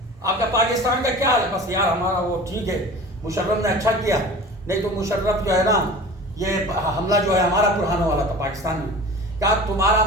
آپ کا پاکستان کا کیا حال ہے؟ بس یار ہمارا وہ ٹھیک ہے، مشرف نے اچھا کیا، نہیں تو مشرف جو ہے نا، یہ حملہ جو ہے ہمارا پر ہونے والا تھا پاکستان میں، کہا تمہارا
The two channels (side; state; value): both; normal; correlation 0.39